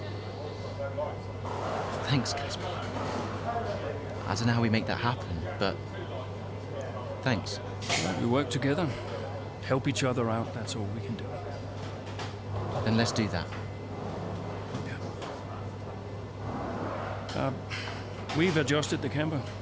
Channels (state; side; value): identical; both; correlation 1.00